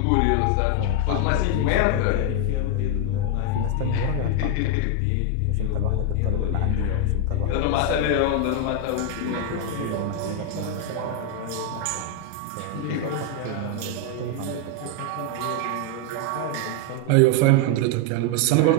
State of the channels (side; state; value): both; different; correlation 0.01